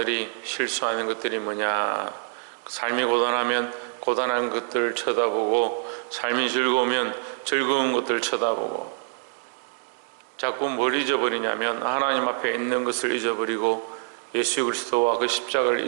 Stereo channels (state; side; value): silent; left; digital silence